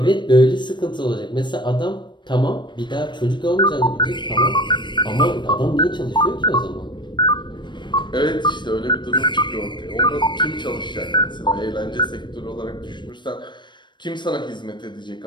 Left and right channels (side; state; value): right; late; 0.22 ms